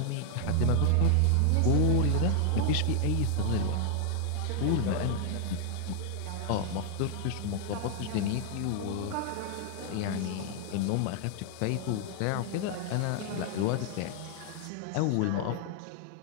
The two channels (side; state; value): both; different; correlation 0.00